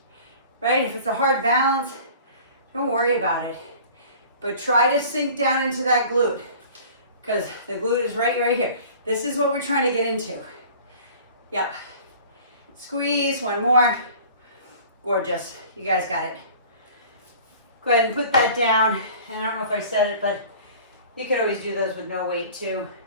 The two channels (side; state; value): both; inverted; correlation -0.45